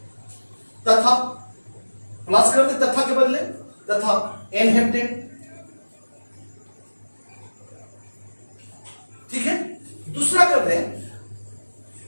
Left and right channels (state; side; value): inverted; both; correlation -1.00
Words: तथा प्लस कर दे तथा के बदले तथा एन हेप्टेन। ठीक है, दूसरा कर दे